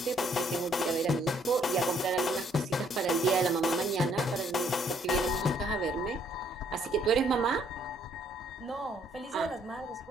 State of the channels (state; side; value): normal; both; correlation 0.66